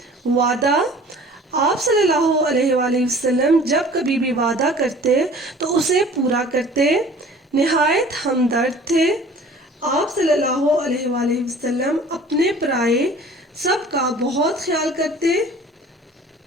وعدہ، آپ صلی اللہ علیہ وآلہ وسلم جب کبھی بھی وعدہ کرتے تو اسے پورا کرتے۔ نہایت ہمدرد تھے، آپ صلی اللہ علیہ وآلہ وسلم اپنے پرائے سب کا بہت خیال کرتے،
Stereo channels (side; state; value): both; normal; correlation 0.47